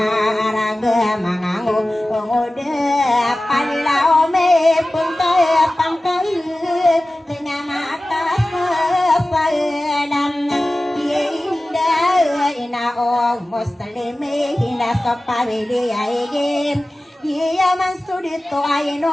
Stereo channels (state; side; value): normal; both; correlation 0.96